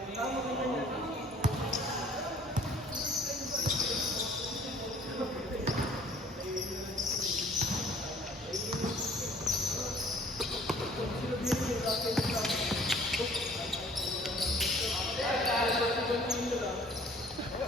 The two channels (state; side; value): normal; both; correlation 0.54